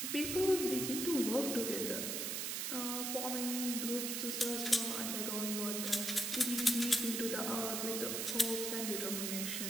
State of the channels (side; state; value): right; noise; hiss, 1 dB below the sound